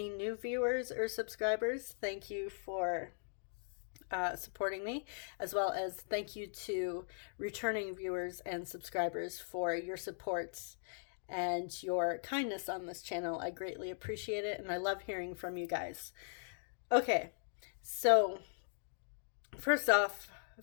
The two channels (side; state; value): right; silent; digital silence